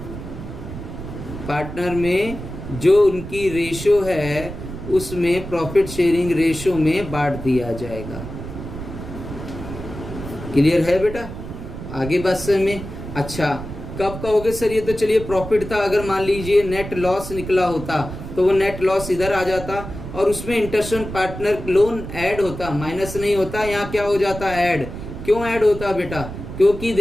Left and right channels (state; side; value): noise; right; rumble, 10 dB below the sound